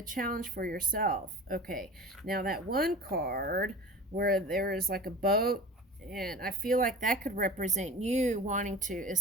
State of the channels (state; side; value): normal; both; correlation 0.36